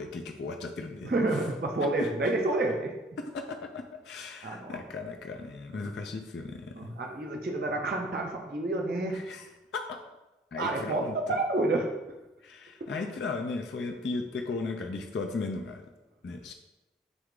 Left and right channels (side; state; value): both; normal; correlation 0.51